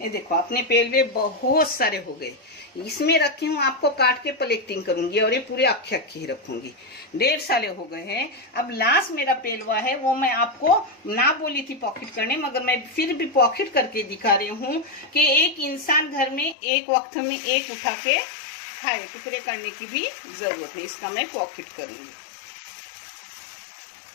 देखो अपने पेलवे बहुत सारे हो गए। इसमें रखी हूँ, आपको काट के प्लेटिंग करूंगी और ये पूरे अक्खे अक्खे ही रखूंगी। 1.5 साल हो गए हैं। अब लास्ट मेरा पेलवा है, वो मैं आपको ना बोली थी पॉकेट करने, मगर मैं फिर भी पॉकेट करके दिखा रही हूँ कि एक इंसान घर में एक वक्त में एक उठा के खाए, टुकड़े करने की भी जरूरत नहीं। इसका मैं पॉकेट करूंगी।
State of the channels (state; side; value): drops out; right; at 16.6 s